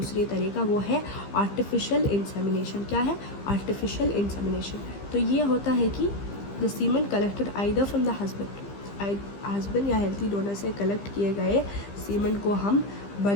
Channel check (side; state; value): right; late; 15 ms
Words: तरीका, वो है आर्टिफिशियल इंसेमिनेशन। क्या है आर्टिफिशियल इंसेमिनेशन? तो ये होता है कि the semen collected either from the husband या हेल्थी डोनर से कलेक्ट किए गए सीमन को हम